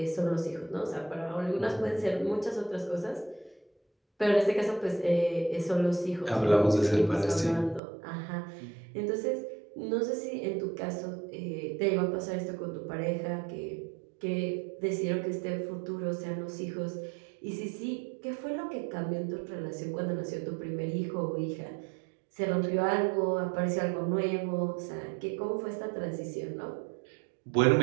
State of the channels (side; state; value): left; drops out; at 7.8 s